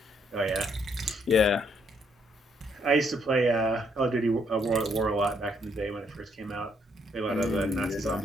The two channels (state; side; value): normal; both; correlation 0.71